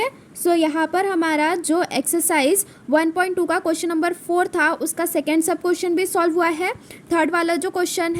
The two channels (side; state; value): both; identical; correlation 1.00